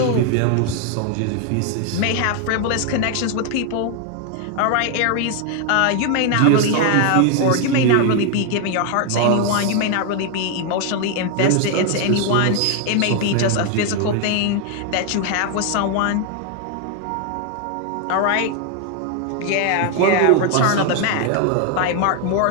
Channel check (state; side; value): different; both; correlation 0.01